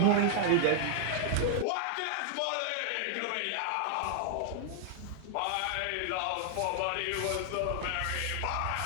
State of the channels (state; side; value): different; both; correlation 0.00